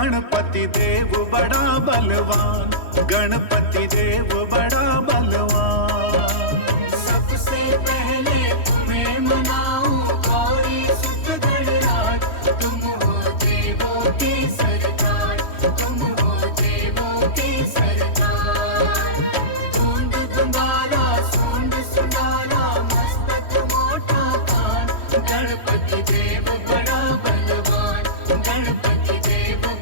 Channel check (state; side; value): late; right; 3.1 ms